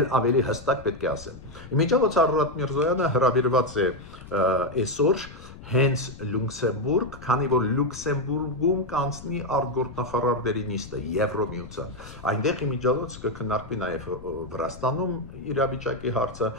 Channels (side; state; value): left; noise; rumble, 16 dB below the sound